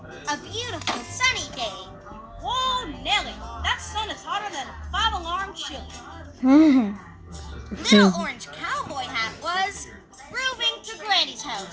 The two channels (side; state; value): both; identical; correlation 1.00